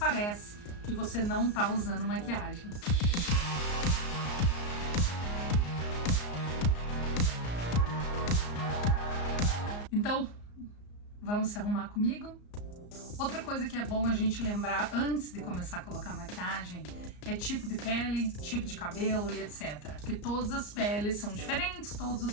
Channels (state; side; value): late; right; 34 ms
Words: que você não tá usando maquiagem. Então, vamos se arrumar comigo? Outra coisa que é bom a gente lembrar antes de começar a colocar maquiagem é tipo de pele, tipo de cabelo e etc. Porque todas as peles são diferentes, todos